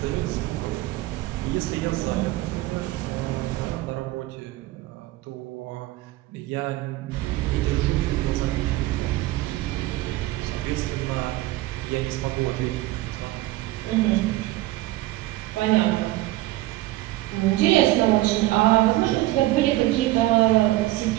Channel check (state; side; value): quieter; left; 17.3 dB